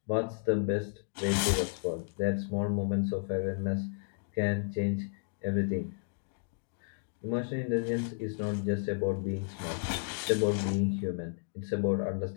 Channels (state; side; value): silent; right; digital silence